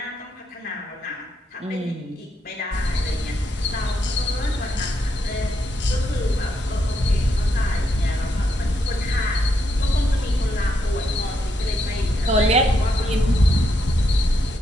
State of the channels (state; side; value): normal; both; correlation 0.79